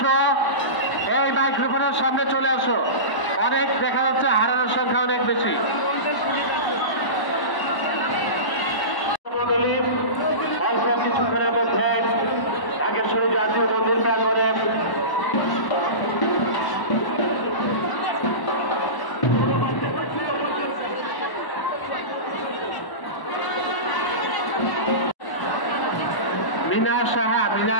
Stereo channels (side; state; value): right; late; 1.1 ms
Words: এই মাইক্রোফোনের সামনে চলে আসো। অনেক দেখা যাচ্ছে হারানোর সংখ্যা অনেক বেশি। অল্প কিছুক্ষণের মধ্যে ঢাকেশ্বরী জাতীয় মন্দির প্রাঙ্গণে মিনা সাহা, মিনা